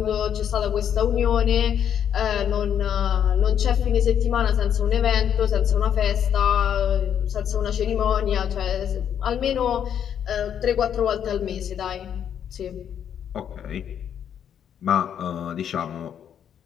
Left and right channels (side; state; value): right; quieter; 9.0 dB